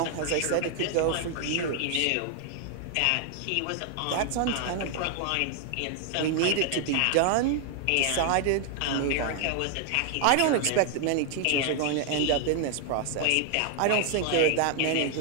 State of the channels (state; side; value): different; both; correlation 0.00